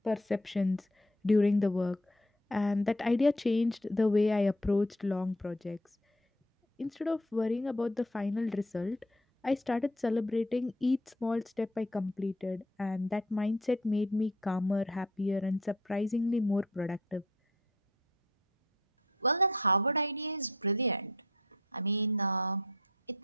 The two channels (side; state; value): both; normal; correlation 0.56